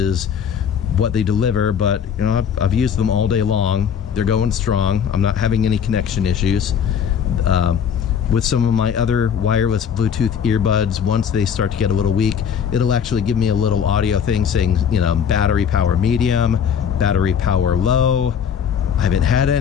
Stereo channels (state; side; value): quieter; right; 7.8 dB